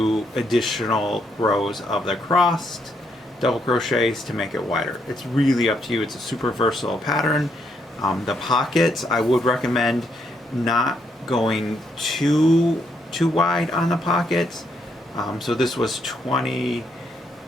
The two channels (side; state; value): both; normal; correlation 0.75